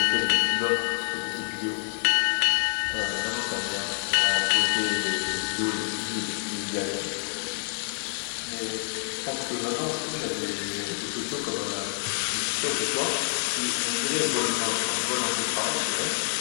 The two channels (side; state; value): right; silent; digital silence